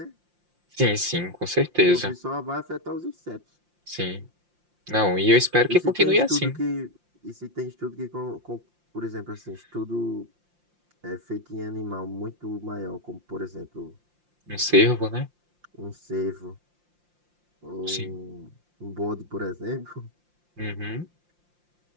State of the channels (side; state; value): left; late; 5.7 ms